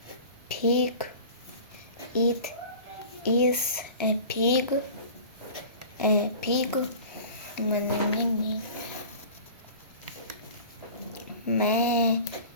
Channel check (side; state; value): both; inverted; correlation -0.40